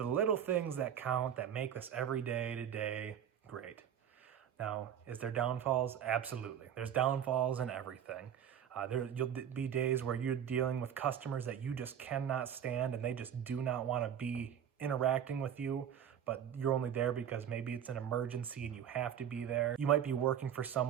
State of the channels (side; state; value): left; quieter; 9.2 dB